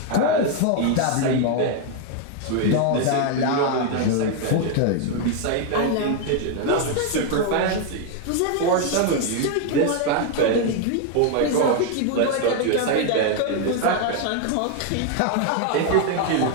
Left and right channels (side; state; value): both; different; correlation 0.01